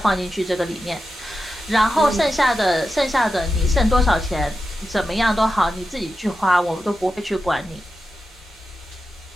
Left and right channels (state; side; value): normal; both; correlation 0.90